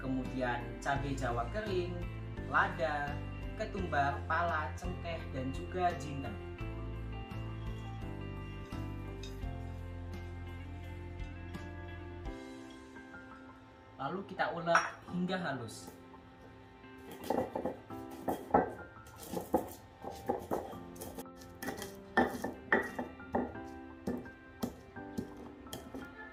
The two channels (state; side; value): identical; both; correlation 1.00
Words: cabai jawa kering, lada, ketumbar, pala, cengkeh, dan juga jinten. Lalu kita ulek hingga halus.